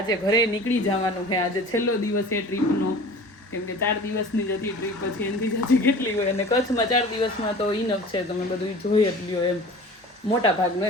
ઘરે નીકળી જવાનું છે. આજે છેલ્લો દિવસ છે ટ્રીપનો. કેમ કે 4 દિવસની જ હતી ટ્રીપ, પછી એનાથી જાજી કેટલી હોય. અને કચ્છમાં 4 દિવસમાં તો ઇનફ છે, તમે બધું જોઈ જ લ્યો એમ મોટા ભાગનું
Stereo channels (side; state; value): both; normal; correlation 0.41